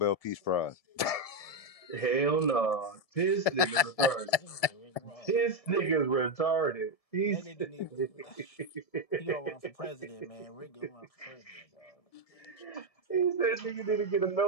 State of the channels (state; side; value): late; right; 1.7 ms